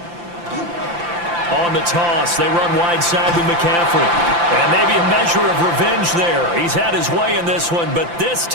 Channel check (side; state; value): left; late; 5.8 ms